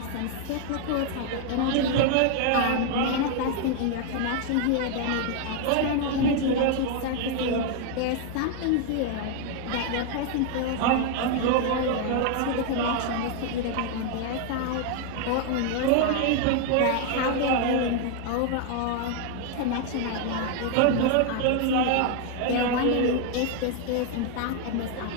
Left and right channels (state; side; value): different; both; correlation 0.00